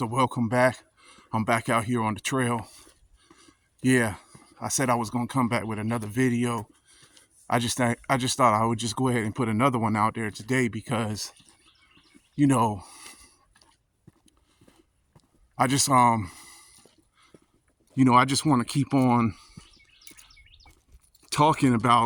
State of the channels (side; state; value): both; identical; correlation 1.00